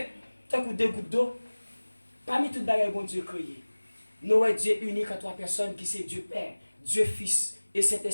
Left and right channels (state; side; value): inverted; both; correlation -1.00